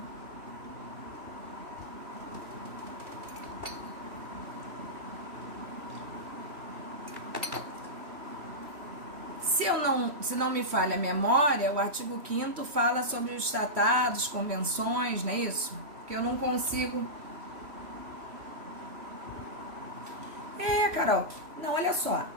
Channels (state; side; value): late; left; 3.1 ms